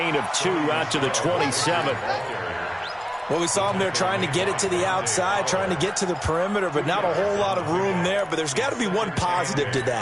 of 2 out to the 27. Well, we saw him there trying to get it to the outside, trying to get to the perimeter, but not a whole lot of room there. But there's got to be one positive to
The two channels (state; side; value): identical; both; correlation 1.00